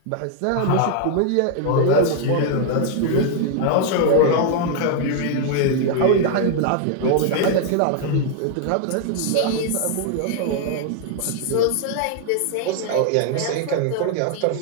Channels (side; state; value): both; different; correlation 0.00